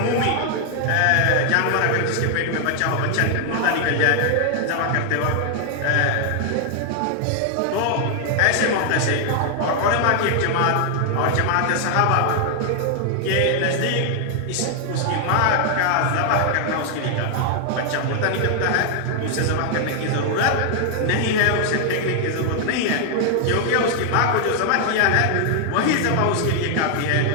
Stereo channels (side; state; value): both; different; correlation 0.00